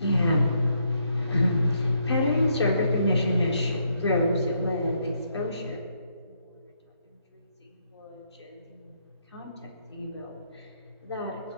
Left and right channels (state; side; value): inverted; both; correlation -0.75